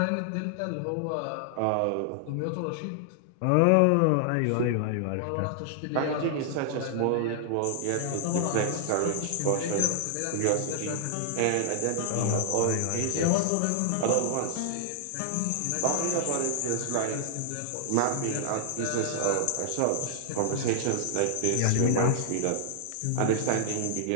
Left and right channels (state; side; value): different; both; correlation 0.00